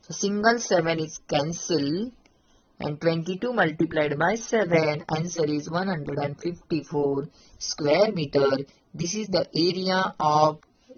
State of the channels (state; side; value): identical; both; correlation 1.00